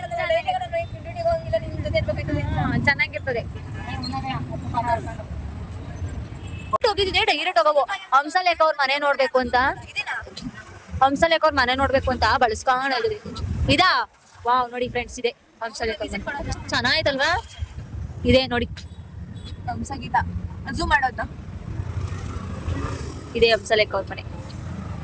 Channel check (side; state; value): both; identical; correlation 1.00